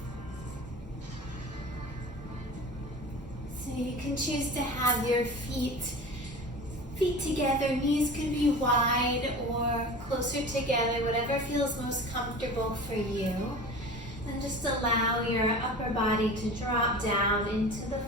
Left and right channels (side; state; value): both; normal; correlation 0.35